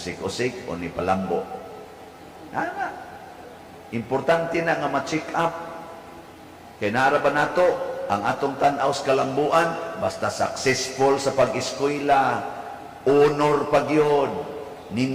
o ni palambo. Ana. Importante na nga ma-check up. Kay naara ba nato ang atong tan-aw sa kalambuan basta successful sa pag-eskwela, honor pagyod,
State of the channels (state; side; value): identical; both; correlation 1.00